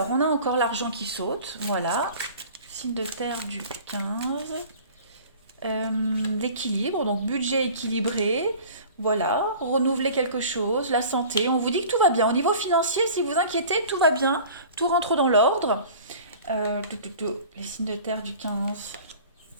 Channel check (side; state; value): both; inverted; correlation -0.44